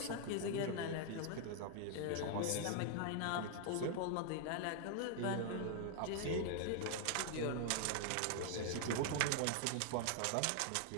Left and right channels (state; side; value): different; both; correlation 0.00